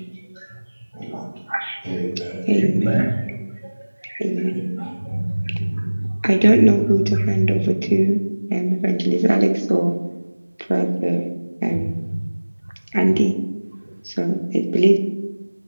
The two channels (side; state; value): both; inverted; correlation -1.00